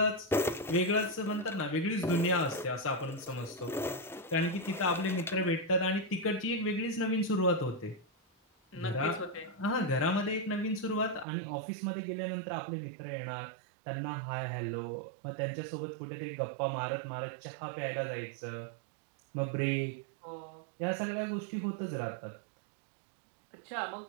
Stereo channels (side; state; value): left; drops out; at 11.2 s